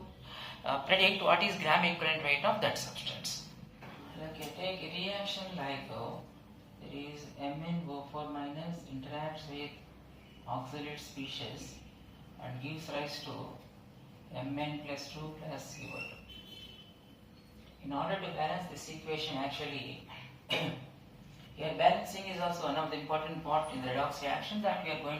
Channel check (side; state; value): both; identical; correlation 1.00